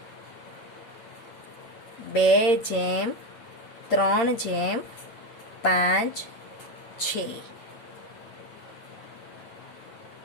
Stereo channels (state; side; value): late; right; 8.6 ms